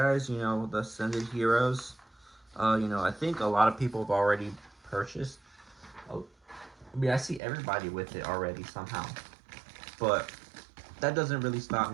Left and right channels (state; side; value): drops out; left; at 7.4 s